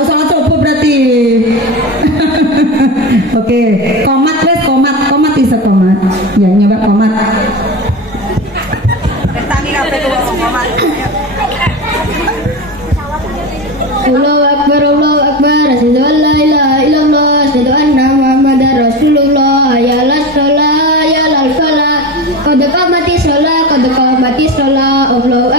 salat subuh berarti. Oke, komat wes komat iso komat. Ya, nyoba komat. Bertani kabeh komat. Allahu Akbar, Allahu Akbar. Asyhadu an la ilaha illallah, asyhadu anna Muhammadar Rasulullah. Ya la shalah, ya la falah. Qad qamatis shalah, qad qamatis shalah. Allahu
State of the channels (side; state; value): both; normal; correlation 0.24